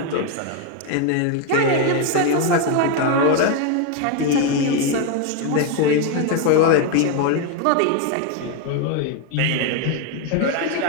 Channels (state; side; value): different; both; correlation 0.01